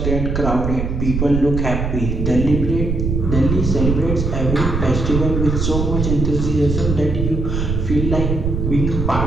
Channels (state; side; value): noise; right; rumble, 1 dB below the sound